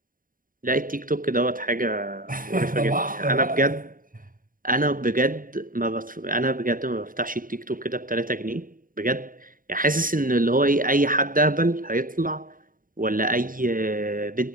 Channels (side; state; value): left; late; 0.40 ms